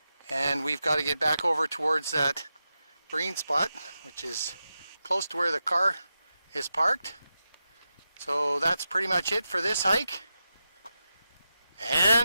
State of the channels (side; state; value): both; inverted; correlation -0.90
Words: and we've got to get back over towards that green spot, which is close to where the car is parked. So that's pretty much it for this hike.